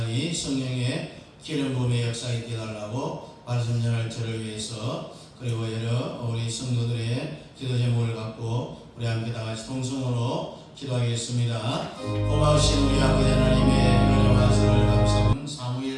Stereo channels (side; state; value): both; identical; correlation 1.00